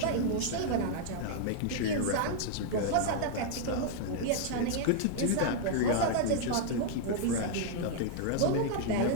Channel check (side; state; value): both; different; correlation -0.01